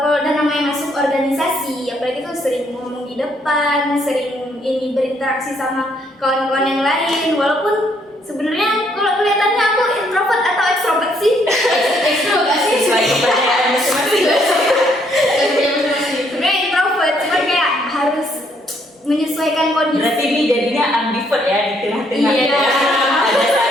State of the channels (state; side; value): normal; both; correlation 0.69